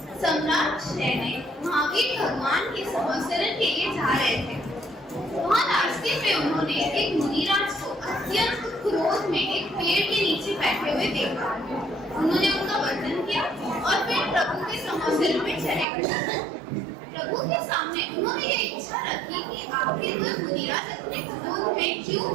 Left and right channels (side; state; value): left; drops out; at 15.9 s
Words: सम्राट शैने महावीर भगवान के संवत्सरण के लिए जा रहे थे। वहाँ रास्ते में उन्होंने एक मुनिराज को अत्यंत क्रोध में एक पेड़ के नीचे बैठे हुए देखा। उन्होंने उनका वंदन किया और फिर प्रभु के संवत्सरण में चले गए। प्रभु के सामने उन्होंने ये इच्छा रखी कि आखिर वह मुनिराज इतने क्रोध में क्यों